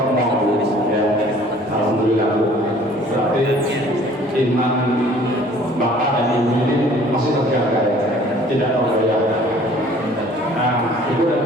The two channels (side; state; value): both; normal; correlation 0.53